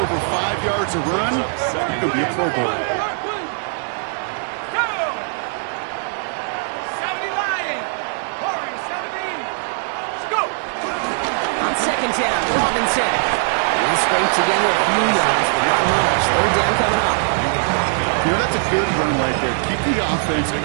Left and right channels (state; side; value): silent; left; 62 dB below the other